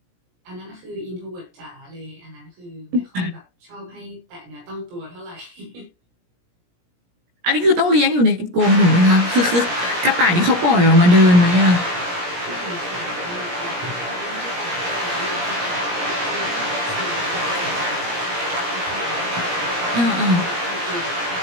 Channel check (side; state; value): left; late; 17 ms